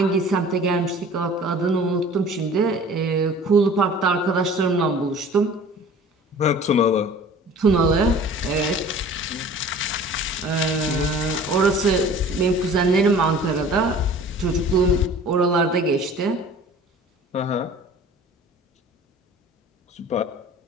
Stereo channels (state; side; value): normal; both; correlation 0.46